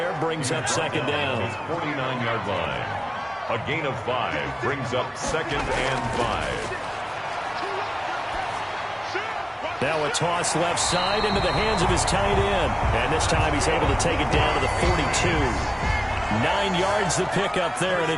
brings up second down. His 49-yard line. A gain of 5 brings up 2nd and 5. Now a toss left side into the hands of his tight end. And this time he's able to take it down to the 42. 9 yards to pick up there, and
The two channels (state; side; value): identical; both; correlation 1.00